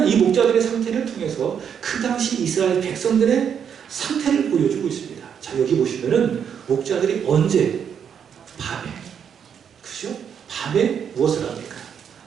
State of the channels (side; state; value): left; quieter; 7.9 dB